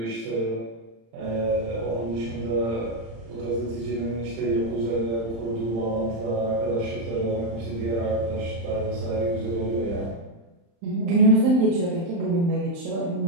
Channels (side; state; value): left; late; 35 ms